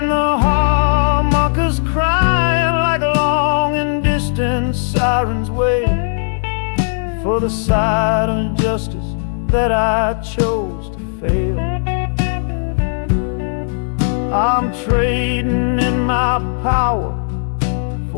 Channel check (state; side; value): silent; right; 68 dB below the other